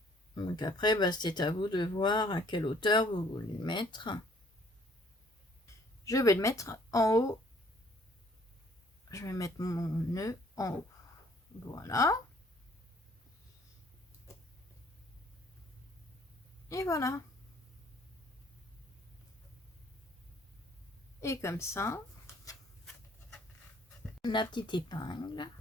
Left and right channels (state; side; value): normal; both; correlation 0.60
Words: Donc après, c'est à vous de voir à quelle hauteur vous voulez le mettre. Je vais le mettre en haut. Je vais mettre mon nœud en haut. Voilà. Et voilà. Et comme ça, la petite épingle,